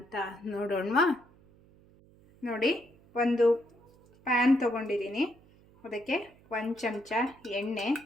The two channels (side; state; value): right; noise; hum, 28 dB below the sound